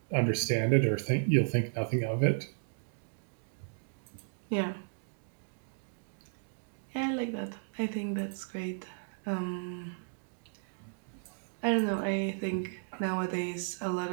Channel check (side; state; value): left; silent; digital silence